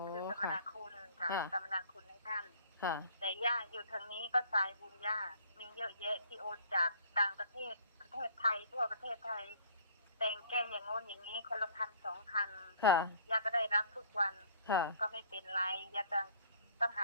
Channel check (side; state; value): both; inverted; correlation -0.55